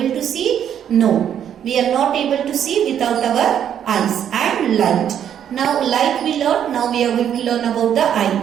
to see? No, we are not able to see without our eyes and light. Now light we learn, now we are going to learn about the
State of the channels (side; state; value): left; quieter; 9.4 dB